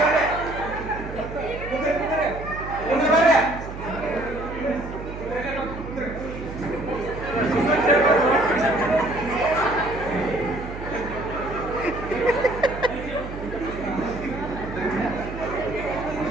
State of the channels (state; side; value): noise; right; hum, 10 dB below the sound